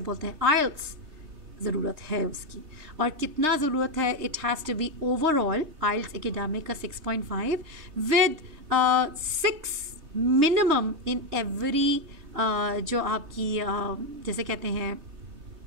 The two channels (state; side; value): late; left; 3.3 ms